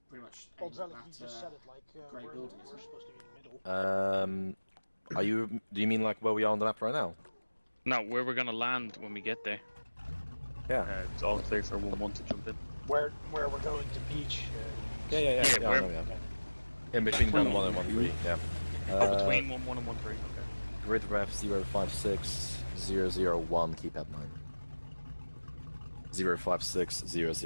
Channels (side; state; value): both; inverted; correlation -1.00